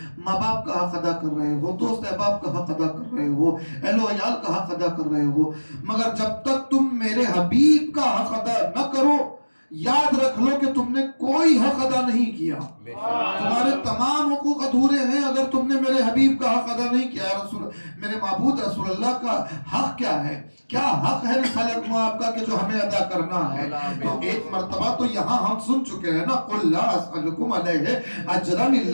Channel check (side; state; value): both; inverted; correlation -1.00